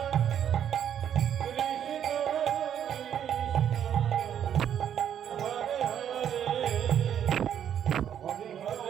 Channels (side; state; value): left; quieter; 9.5 dB